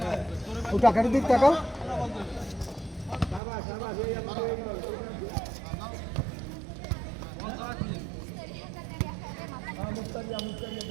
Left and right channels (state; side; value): drops out; left; at 3.4 s